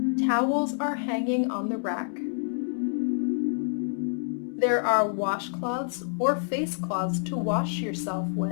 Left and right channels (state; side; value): silent; right; 60 dB below the other